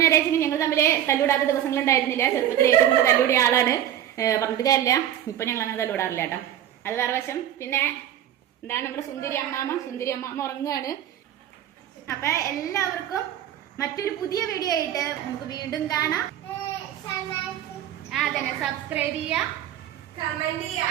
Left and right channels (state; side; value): quieter; left; 11.3 dB